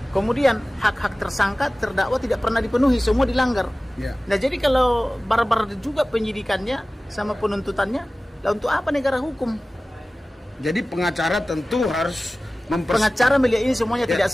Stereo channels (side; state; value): both; normal; correlation 0.97